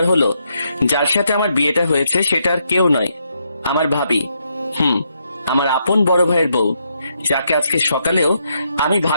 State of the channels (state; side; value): inverted; both; correlation -0.78